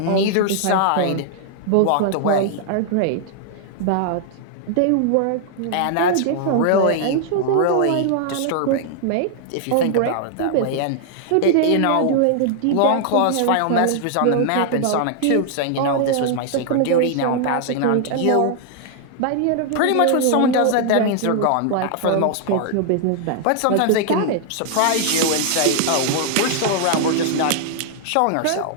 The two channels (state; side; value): different; both; correlation -0.01